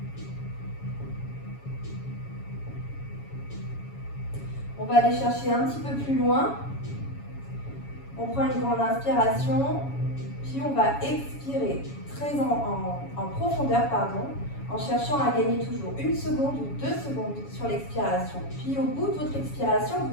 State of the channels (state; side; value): late; right; 7.2 ms